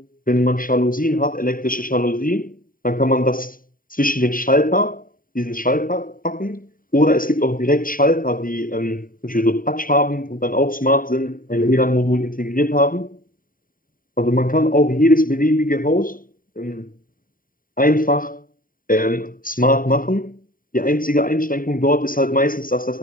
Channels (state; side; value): late; right; 0.41 ms